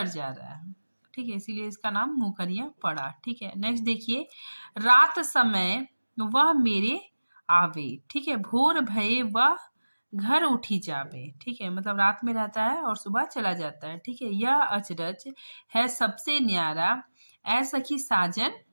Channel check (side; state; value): both; inverted; correlation -1.00